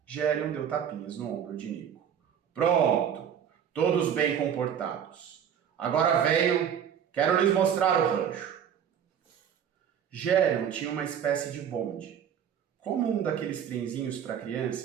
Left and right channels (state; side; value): quieter; left; 8.6 dB